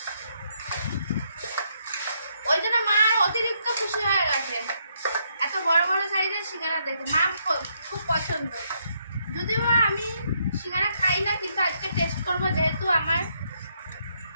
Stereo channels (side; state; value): both; inverted; correlation -0.75